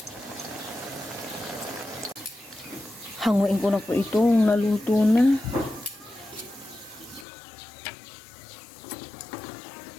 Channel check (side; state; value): right; drops out; at 7.2 s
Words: Hanguin ko na po itong naluto na.